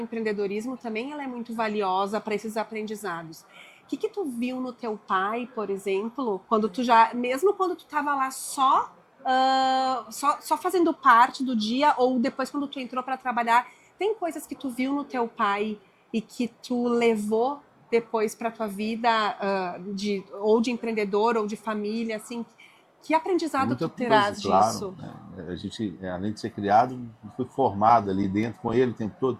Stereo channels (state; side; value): identical; both; correlation 1.00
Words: também ela é muito valiosa para esses aprendizados. O que tu viu no teu pai, por exemplo, quando tu já, mesmo quando tu estava lá só fazendo parte do dia ou depois quando tu entrou para trabalhar, tem coisas que tu viu no teu pai e que tu levou depois para tua vida ou de empreendedor ou de família, assim, que aprendizado tu Muita coisa, terás claro, disso? né? A gente, além de ser criado, foi formado ali dentro com ele o tempo todo,